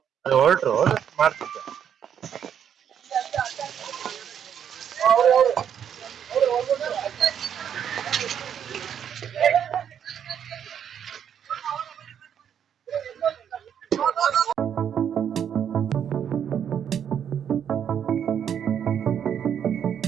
ಅದು ಹೊರಟ್ರು ಮಾಡ್ತಿದ್ದೆ.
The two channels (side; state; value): left; quieter; 8.7 dB